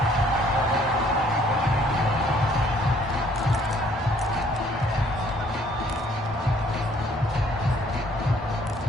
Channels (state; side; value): normal; both; correlation 0.61